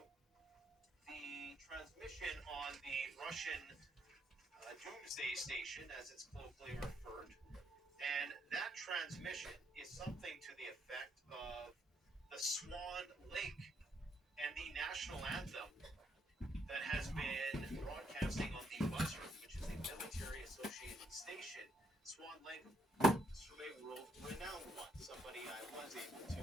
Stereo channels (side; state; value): both; normal; correlation 0.74